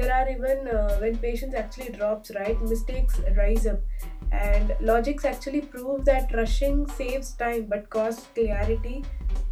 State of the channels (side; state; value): both; identical; correlation 1.00